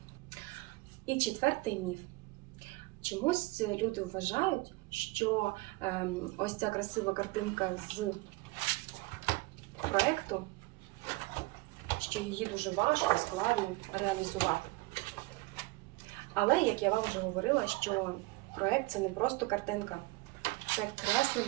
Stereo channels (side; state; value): left; quieter; 22.7 dB